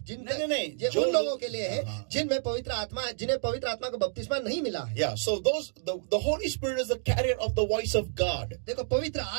उन लोगों के लिए है जिनमें पवित्र आत्मा का बपतिस्मा नहीं मिला है। Yeah. So the Hoली Spirit is the carrier of the voice of God. देखो पवित्र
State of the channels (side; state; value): left; silent; digital silence